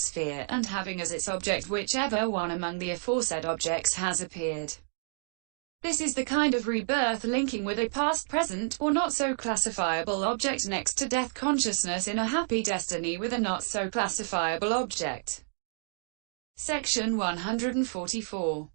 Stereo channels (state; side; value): silent; left; digital silence